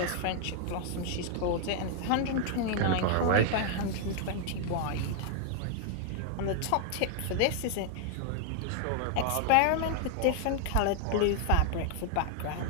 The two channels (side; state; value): both; different; correlation 0.00